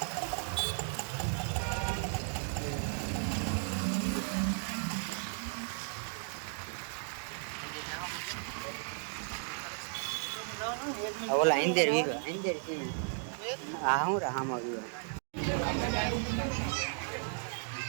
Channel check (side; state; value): left; silent; 54 dB below the other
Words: ઓલા ઇન્દેર વીગો ઇન્દેર કી આ હું રાહામાં વીગો